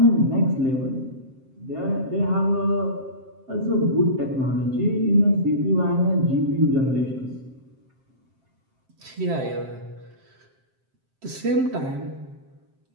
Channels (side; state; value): left; late; 7.6 ms